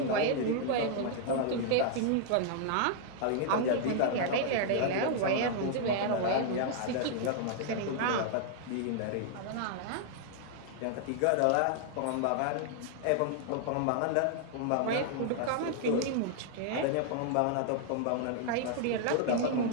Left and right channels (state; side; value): different; both; correlation -0.01